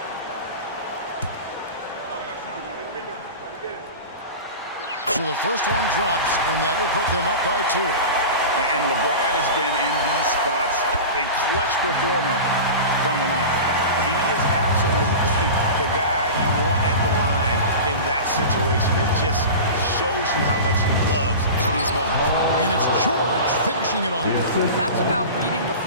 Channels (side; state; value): both; inverted; correlation -0.30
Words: So the first one drops, and that will put them up by 2. And LeBron has been in these spots a clutch performer from the line. He is absolutely the guy you want at the line in that situation. It just shows you how much he loves these moments. And it's George finishing it off. That's about reading the